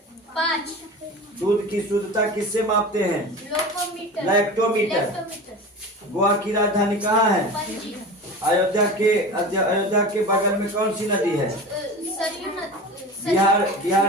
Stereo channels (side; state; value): both; normal; correlation 0.32